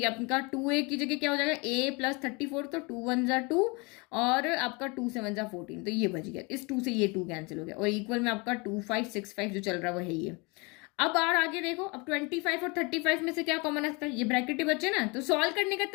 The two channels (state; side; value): quieter; right; 28.8 dB